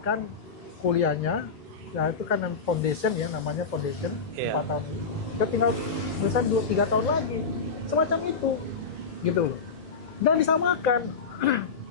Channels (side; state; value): right; quieter; 5.0 dB